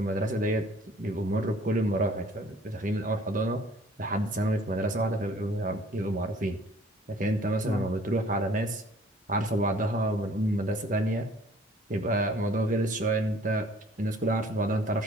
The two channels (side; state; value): both; normal; correlation 0.54